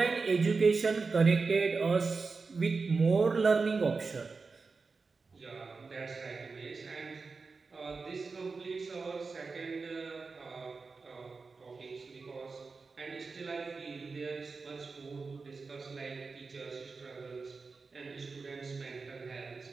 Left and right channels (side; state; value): left; quieter; 4.4 dB